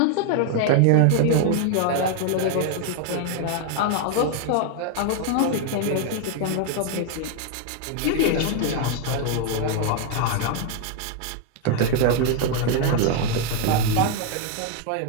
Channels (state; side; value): different; both; correlation 0.00